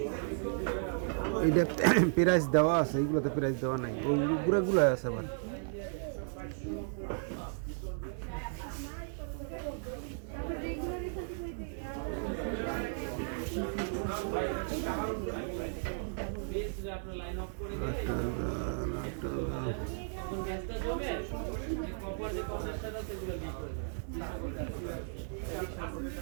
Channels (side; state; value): left; silent; digital silence